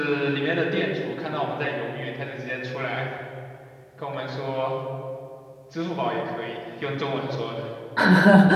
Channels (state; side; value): identical; both; correlation 1.00